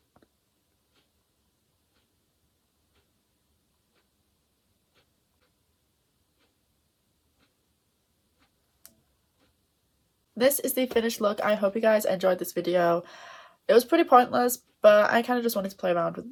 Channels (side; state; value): both; identical; correlation 1.00